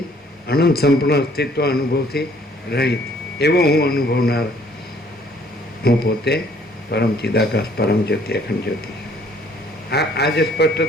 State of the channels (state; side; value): normal; both; correlation 0.60